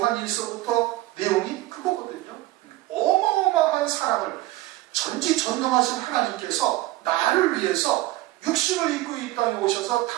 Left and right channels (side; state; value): left; quieter; 17.6 dB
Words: 1서부터 내용이 그거거든요. 어마어마한 사랑을 전지전능하신 하나님께서 나를 위해서 육신을 입고 이 땅에 오셔서